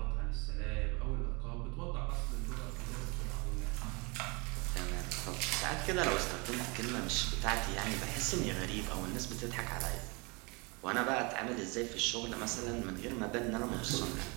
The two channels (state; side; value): quieter; left; 29.1 dB